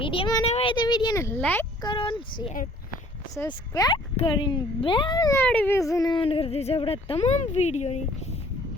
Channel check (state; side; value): normal; both; correlation 0.55